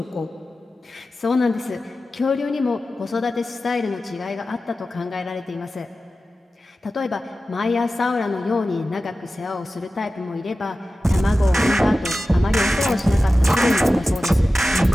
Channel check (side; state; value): both; normal; correlation 0.94